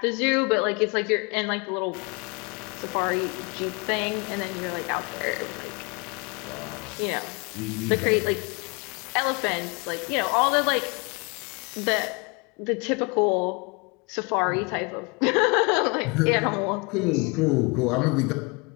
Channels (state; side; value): quieter; right; 30.3 dB